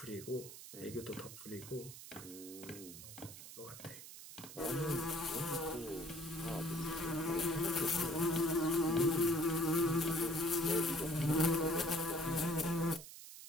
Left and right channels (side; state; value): right; noise; hiss, 14 dB below the sound